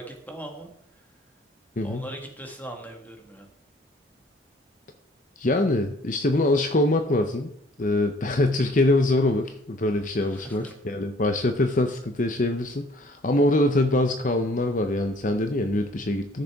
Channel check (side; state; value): both; normal; correlation 0.57